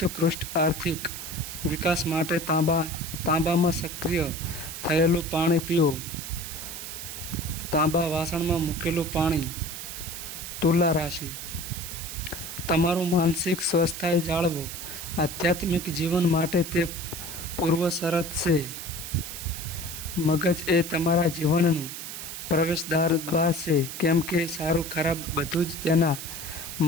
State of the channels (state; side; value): noise; right; hiss, 8 dB below the sound